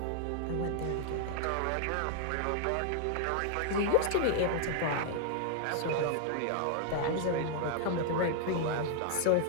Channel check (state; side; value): different; both; correlation 0.00